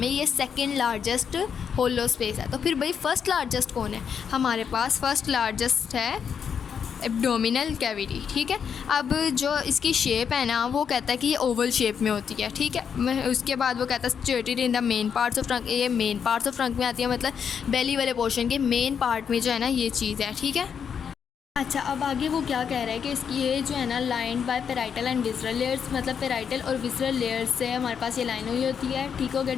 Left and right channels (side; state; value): right; quieter; 7.2 dB